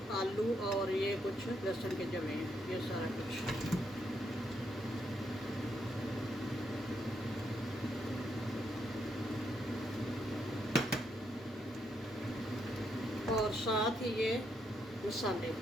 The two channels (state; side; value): normal; both; correlation 0.78